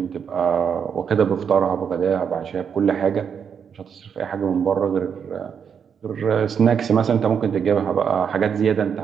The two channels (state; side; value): quieter; left; 7.2 dB